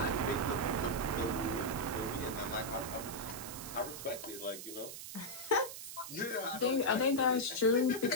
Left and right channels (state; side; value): noise; right; hiss, 10 dB below the sound